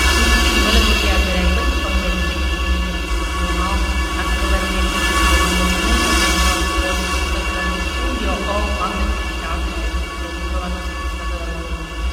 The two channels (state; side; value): identical; both; correlation 1.00